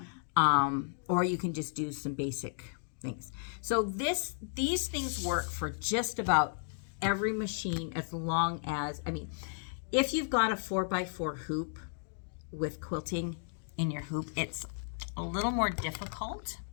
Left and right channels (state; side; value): silent; right; digital silence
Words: Or you can just do some basic things. So these things work for just about every machine, as long as, I mean, if you've got a 4x4 hoop with quilting in your hoop, it's a little more difficult